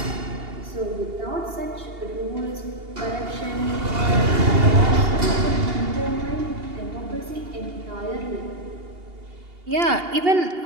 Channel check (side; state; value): left; late; 2.8 ms